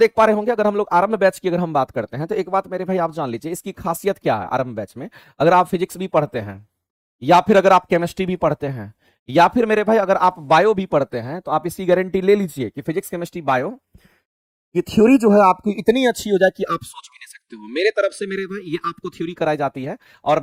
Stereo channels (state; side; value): identical; both; correlation 1.00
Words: पा रहे होंगे, अगर हम लोग आरंभ बैच की अगर हम बात करते हैं, तो एक बात मेरे भाई आप जान लीजिए, इसकी खासियत क्या है आरंभ बैच में। अगर आप फिजिक्स भी पढ़ते हैं, या फिर अगर आप केमिस्ट्री भी पढ़ते हैं, या फिर मेरे भाई अगर आप बायो भी पढ़ते हैं, तो आप इसकी गारंटी ले लीजिए कि फिजिक्स केमिस्ट्री बायो ये थ्योरी जो है आपकी इतनी अच्छी हो जाए कि आप सोच भी नहीं सकते हो। मेरे तरफ से मेरे भाई ये आपको थ्योरी कराई जाती है और